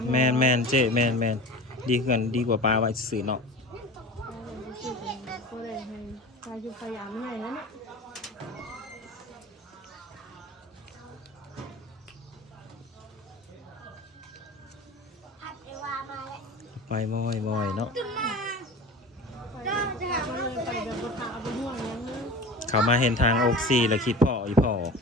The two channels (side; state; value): both; normal; correlation 0.35